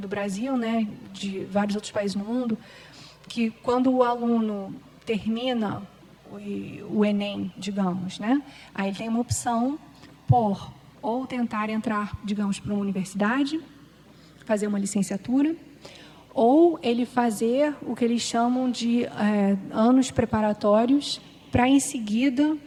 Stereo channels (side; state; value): both; identical; correlation 1.00